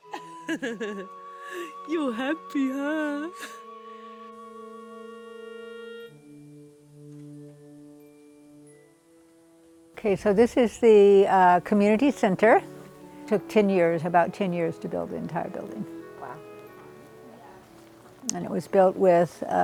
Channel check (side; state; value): both; identical; correlation 1.00